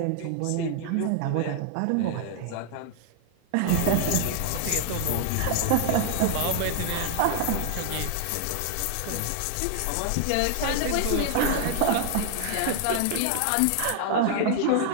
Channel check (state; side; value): different; both; correlation 0.00